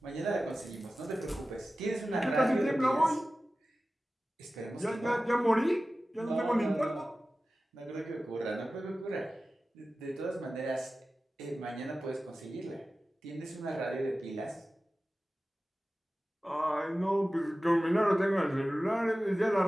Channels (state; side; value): normal; both; correlation 0.95